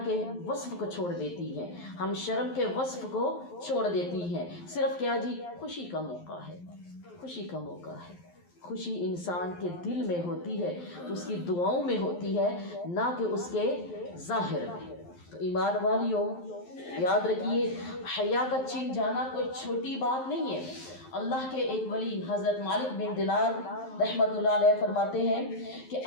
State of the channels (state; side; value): late; right; 11 ms